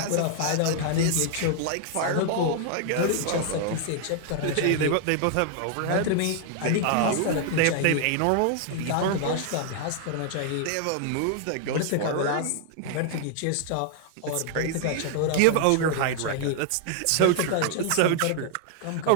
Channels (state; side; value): different; both; correlation 0.00